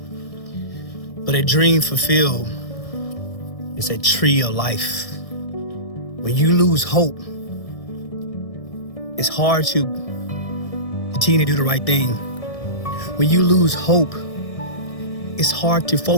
but a dream fulfilled is a tree of life. When you lose hope, it's hard to continue to do the right thing. When you lose hope, it's hard to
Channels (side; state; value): right; late; 1.6 ms